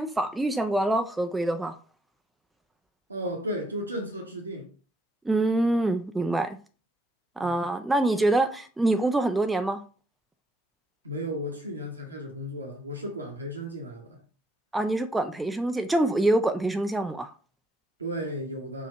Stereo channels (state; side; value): normal; both; correlation 0.75